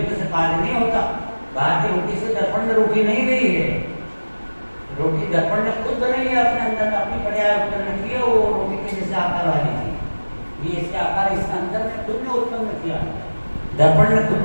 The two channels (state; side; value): inverted; both; correlation -1.00